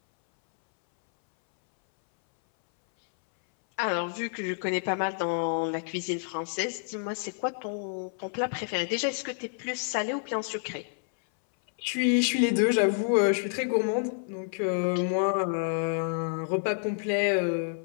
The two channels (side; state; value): right; silent; 59 dB below the other